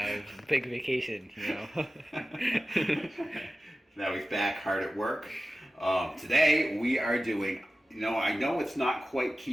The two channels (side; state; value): both; normal; correlation 0.95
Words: big vacation, you know. Now he's back hard at work. Today we are doing, I know it's not quite